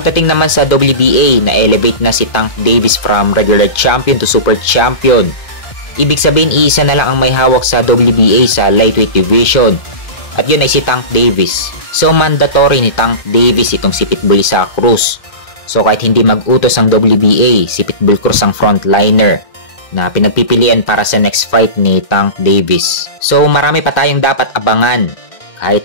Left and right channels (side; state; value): right; late; 2.0 ms